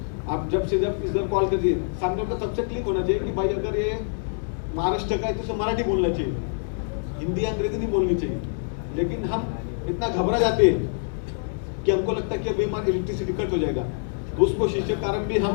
आप जब से जब इधर कॉल करिए, सामने को सबसे क्लिक होना चाहिए कि भाई अगर ये महाराष्ट्र का है तो उसे मराठी बोलना चाहिए, हिंदी अंग्रेजी नहीं बोलनी चाहिए। लेकिन हम इतना घबरा जाते हैं कि हमको लगता है कि अभी हमारा इलेक्ट्रिसिटी कट हो जाएगा, तो उस कोशिश के कारण भी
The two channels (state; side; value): silent; right; digital silence